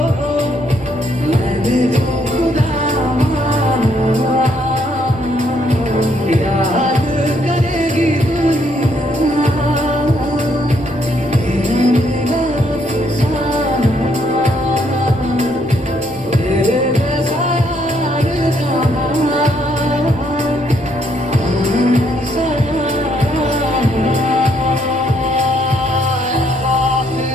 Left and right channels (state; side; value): noise; left; rumble, 22 dB below the sound